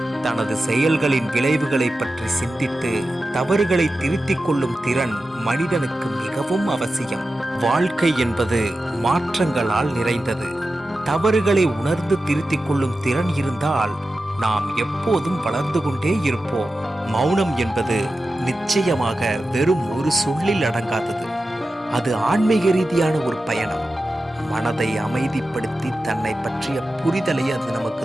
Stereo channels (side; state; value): both; normal; correlation 0.93